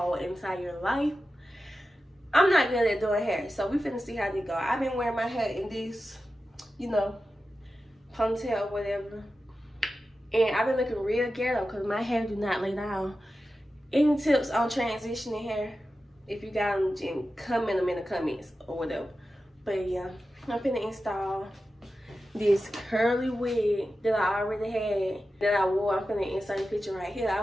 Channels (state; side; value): normal; both; correlation 0.92